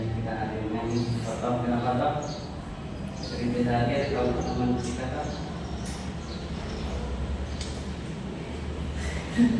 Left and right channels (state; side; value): identical; both; correlation 1.00